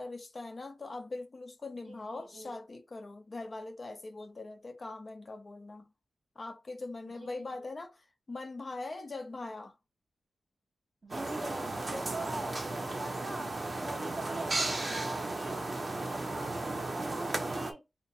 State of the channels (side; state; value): both; normal; correlation 0.94